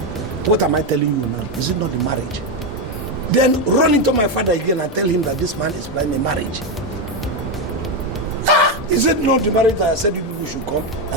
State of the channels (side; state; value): both; normal; correlation 0.08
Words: What am I telling you now? Is it not the marriage? Then run into my father again and tell him that this man is planning a marriage. Is it not the marriage that I said you people should come?